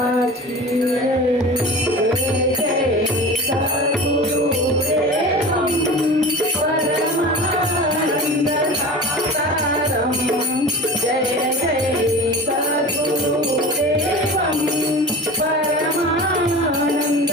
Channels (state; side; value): normal; both; correlation 0.35